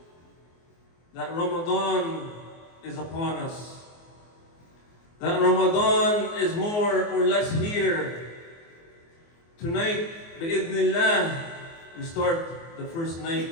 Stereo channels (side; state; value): right; late; 24 ms